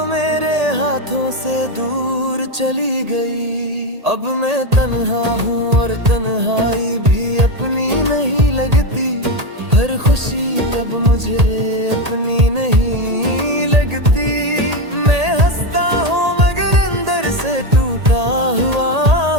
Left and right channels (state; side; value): late; left; 1.8 ms